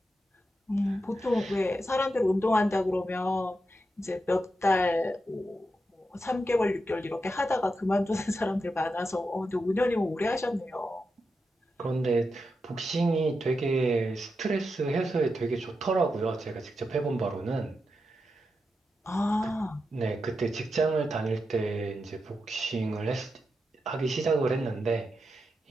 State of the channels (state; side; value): normal; both; correlation 0.87